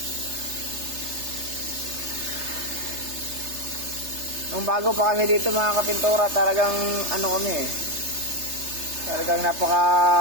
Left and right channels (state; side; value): late; left; 3.3 ms